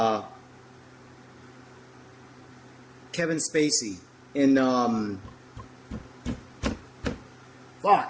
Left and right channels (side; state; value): both; identical; correlation 1.00